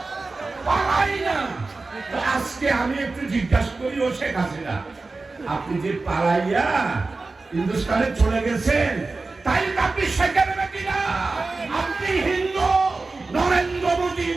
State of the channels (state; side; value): quieter; left; 3.7 dB